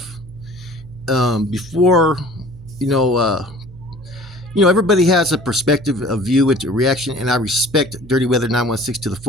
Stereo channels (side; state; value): right; noise; hum, 20 dB below the sound